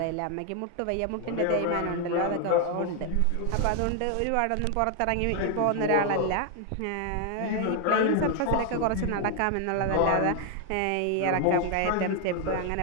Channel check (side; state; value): both; different; correlation 0.00